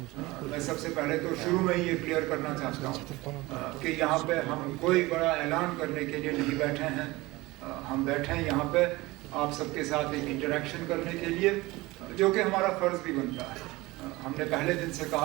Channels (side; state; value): left; quieter; 20.8 dB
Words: मैं सबसे पहले तो शुरू में ही ये क्लियर करना चाहता हूँ कि यहाँ पे हम कोई बड़ा ऐलान करने के लिए नहीं बैठे हैं. हम बैठे हैं यहाँ पे आप सबके साथ एक इंटरेक्शन करने के लिए, जो कि हमारा फ़र्ज़ भी बनता है. हमने पहले दिन से